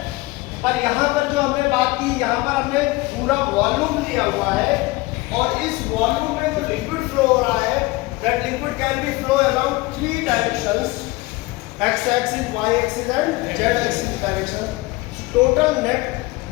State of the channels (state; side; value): quieter; right; 21.8 dB